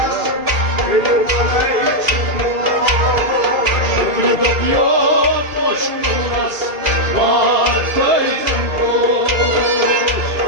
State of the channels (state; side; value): late; left; 2.6 ms